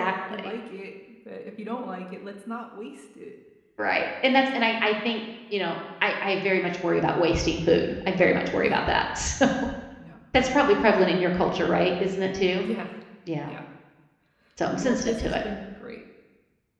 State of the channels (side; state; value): both; identical; correlation 1.00